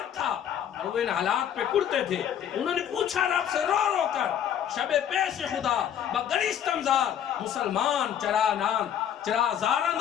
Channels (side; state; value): right; quieter; 9.6 dB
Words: تھا، اور وہ ان حالات پہ کرتے تھے۔ انہوں نے پوچھا رب سے رو رو کر شب پیش خدا بگریستم زار، مسلمان چرا زارن